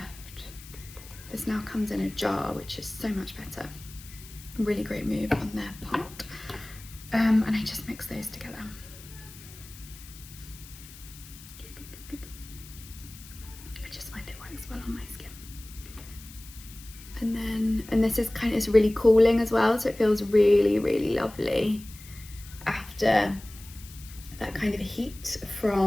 this now comes in a jar, which is so much better. Really great move on their part. And I just mix those together. I just find it works well on my skin. And this is it's really cooling as well, so it feels really, really lovely after that kind of heat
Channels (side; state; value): left; noise; hiss, 18 dB below the sound